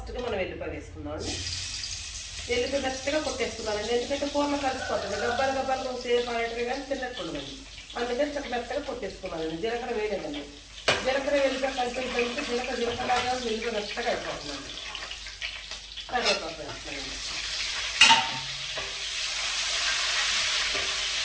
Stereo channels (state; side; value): identical; both; correlation 1.00